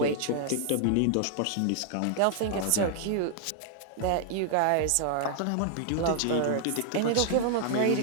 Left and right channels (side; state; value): both; different; correlation -0.01